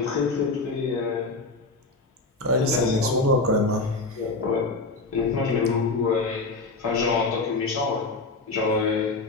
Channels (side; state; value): right; quieter; 3.4 dB